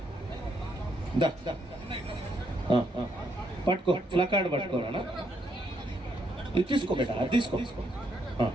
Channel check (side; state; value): both; normal; correlation 0.75